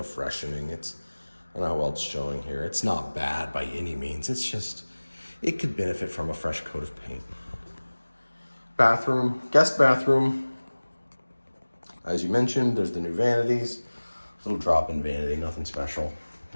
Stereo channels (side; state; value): both; inverted; correlation -1.00